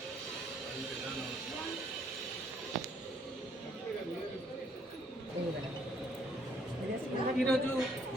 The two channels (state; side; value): normal; both; correlation 0.66